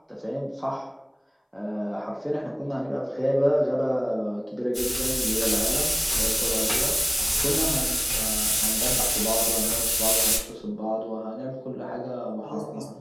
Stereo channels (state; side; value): identical; both; correlation 1.00